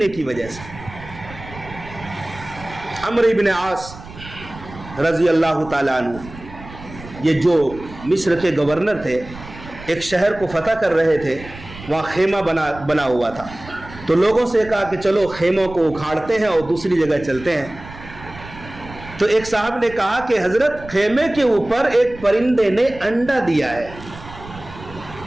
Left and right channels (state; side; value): noise; right; rumble, 16 dB below the sound